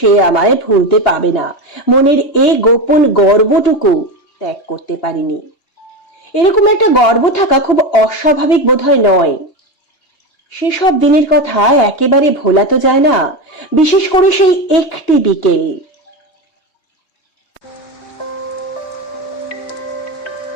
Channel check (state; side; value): late; right; 3.2 ms